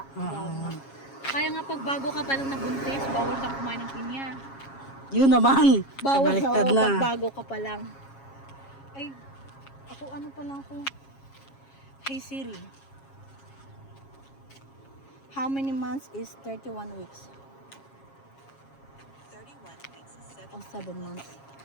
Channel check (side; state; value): right; late; 7.3 ms